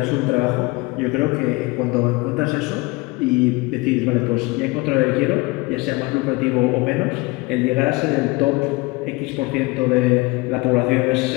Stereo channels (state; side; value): quieter; right; 24.0 dB